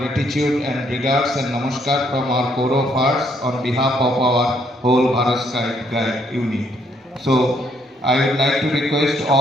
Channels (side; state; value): both; normal; correlation 0.70